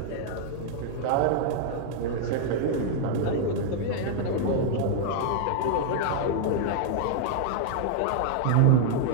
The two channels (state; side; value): different; both; correlation -0.01